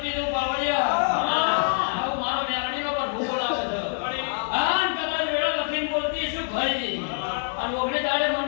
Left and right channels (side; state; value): right; silent; digital silence